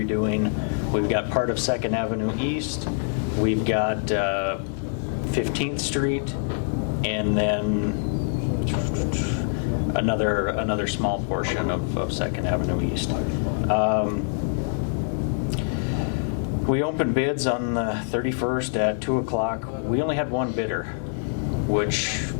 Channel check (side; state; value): right; silent; 62 dB below the other